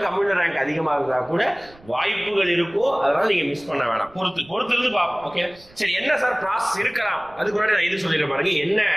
கம்யூனல் ரேங்க் அதிகமா இருந்தா கூட வாய்ப்புகள் இருக்கும். அதனால நீங்க மிஸ் பண்ண வேணாம், பொறுத்து இருந்து பார்ப்போம். ஓகே, சரி, என்ன சார் ப்ராசஸ் இருக்கலாம்? அதுக்கு முன்னாடி நான் இது சொல்லிடுறேன் பாருங்க. என்ன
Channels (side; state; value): right; noise; rumble, 25 dB below the sound